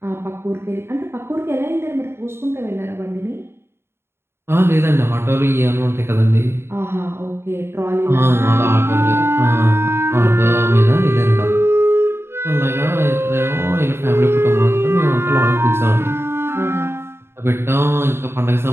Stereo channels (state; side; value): late; left; 0.12 ms